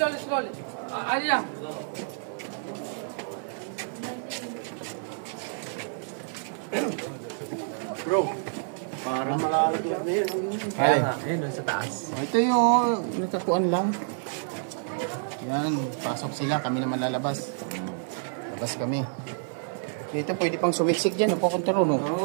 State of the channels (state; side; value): silent; left; digital silence